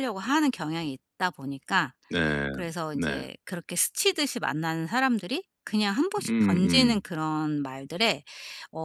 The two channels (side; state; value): both; identical; correlation 1.00